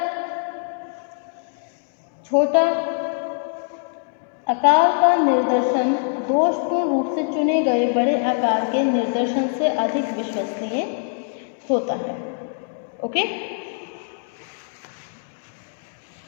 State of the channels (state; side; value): silent; right; digital silence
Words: छोटा आकार का निर्देशन दोषपूर्ण रूप से चुने गए बड़े आकार के निर्देशन से अधिक विश्वसनीय होता है. Okay.